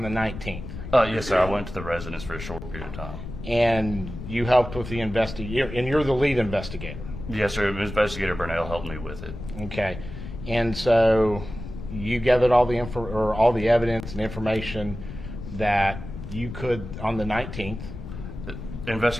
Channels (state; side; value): noise; left; rumble, 10 dB below the sound